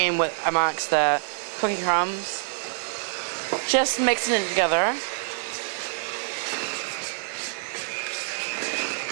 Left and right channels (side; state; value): left; silent; digital silence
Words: with amongst the cookie crumbs, just mixing it together.